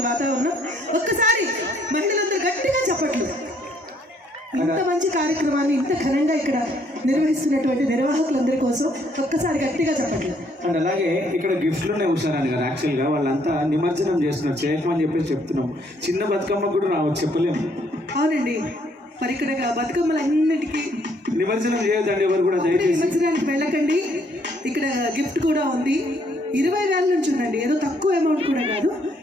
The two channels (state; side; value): normal; both; correlation 0.67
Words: వాతావరణం. ఒక్కసారి మహిళలందరూ గట్టిగా చెప్పట్లు. ఇంత మంచి కార్యక్రమాన్ని ఇంత ఘనంగా ఇక్కడ నిర్వహిస్తున్నటువంటి నిర్వాహకులందరి కోసం ఒక్కసారి గట్టిగా చెప్పట్లు. అండ్ అలాగే ఇక్కడ గిఫ్ట్లు ఉన్నాయి హుషారాని గారు. యాక్చువల్గా వాళ్ళంతా నిమజ్జనం చేస్తున్నారు, చేయకమని చెప్పేసి చెప్తున్నాం. చిన్న బతుకమ్మ కూడా రావచ్చు, చెప్పలేము. అవునండి, మరి ఇక్కడ బతుకమ్మలన్నిటికీ నిమజ్జనం చేయొద్దండి ఎవరు కూడా, దయచేసి నిమజ్జనానికి వెళ్ళకండి. ఇక్కడ గిఫ్ట్ కూడా ఉంది. 20,000 నుంచి ఉందండి, ఏదో తక్కువ అమౌంట్ కూడా కాదు.